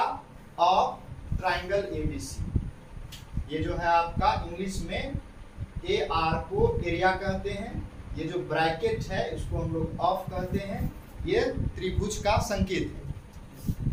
ऑफ ट्राइंगल ABC। ये जो है आपका इंग्लिश में AR को एरिया कहते हैं, ये जो ब्रैकेट है इसको हम लोग ऑफ कहते हैं। ये त्रिभुज का संकेत है।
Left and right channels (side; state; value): both; identical; correlation 1.00